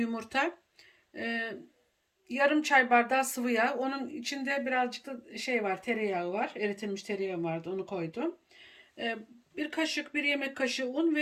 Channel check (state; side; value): identical; both; correlation 1.00